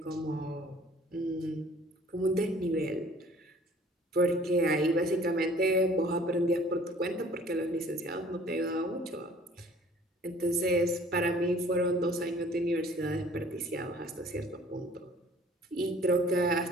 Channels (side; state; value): both; normal; correlation 0.53